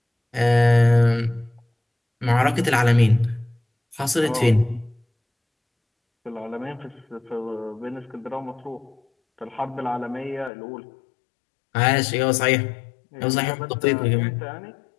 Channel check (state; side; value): drops out; right; at 10.5 s